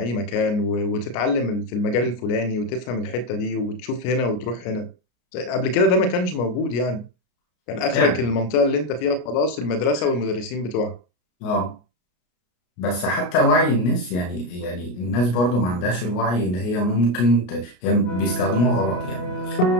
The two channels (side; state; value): right; late; 33 ms